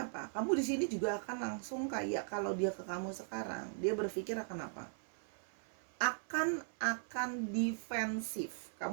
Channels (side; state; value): left; silent; 52 dB below the other